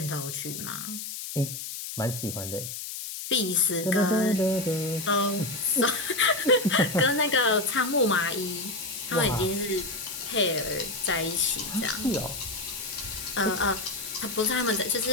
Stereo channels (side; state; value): left; noise; hiss, 7 dB below the sound